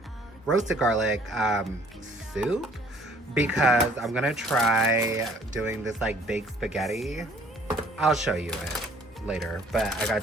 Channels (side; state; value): both; normal; correlation 0.58